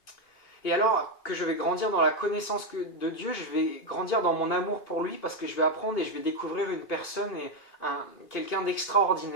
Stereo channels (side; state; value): right; late; 2.5 ms